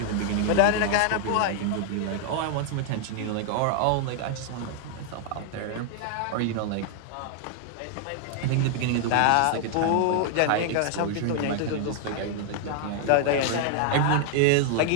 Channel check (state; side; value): different; both; correlation 0.00